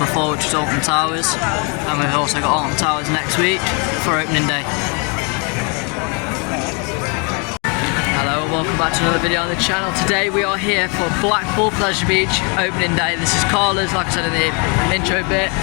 which was Alton Towers, and we've also got Alton Towers next week for opening day. Hello and welcome back to another video on the channel. Today we are here for Blackpool Pleasure Beach opening day. This is Carla's, like I said in the intro bit,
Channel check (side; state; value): right; quieter; 33.9 dB